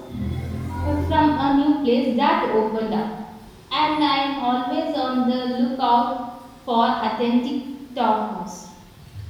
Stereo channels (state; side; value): identical; both; correlation 1.00